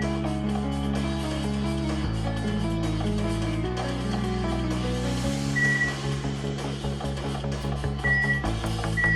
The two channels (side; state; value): both; identical; correlation 1.00